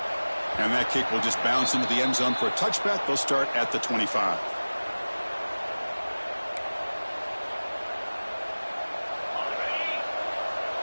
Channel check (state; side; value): inverted; both; correlation -1.00